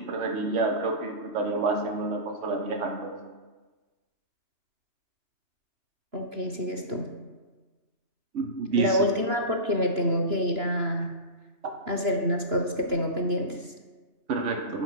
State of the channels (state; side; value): late; left; 2.9 ms